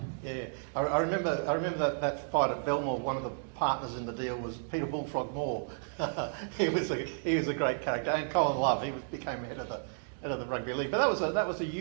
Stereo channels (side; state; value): left; silent; digital silence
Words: Yeah, I remember that fight at Belmore. One of the partners in the deal was Peter Bullfrog Moore. he was a great character, and Colin Love. He became head of the rugby league. But that was a